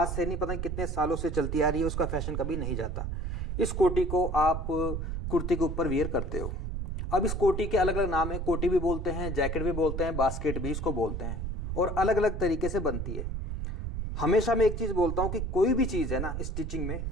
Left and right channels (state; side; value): noise; right; rumble, 3 dB below the sound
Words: से नहीं पता कितने सालों से चलती आ रही है, उसका फैशन कभी नहीं जाता। इस कोटी को आप कुर्ती के ऊपर वियर करते हो। अब इस कोटी के अलग अलग नाम है, कोटी भी बोलते हैं, जैकेट भी बोलते हैं, बास्केट भी इसको बोलते हैं और अलग अलग तरीके से बनती है। हमेशा मैं एक चीज़ बोलता हूँ कि कोई भी चीज़ है ना स्टिचिंग में,